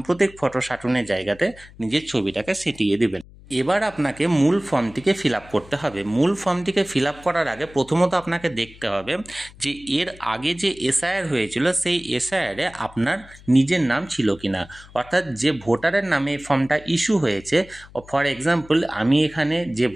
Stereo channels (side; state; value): left; noise; hum, 22 dB below the sound